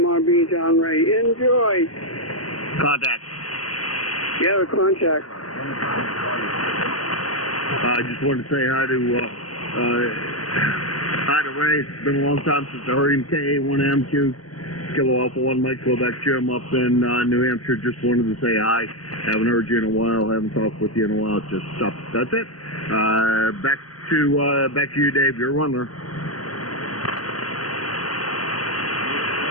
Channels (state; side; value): late; right; 0.68 ms